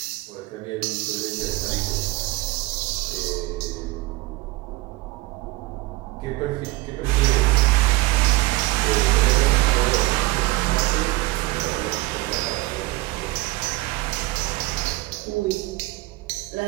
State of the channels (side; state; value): left; quieter; 20.5 dB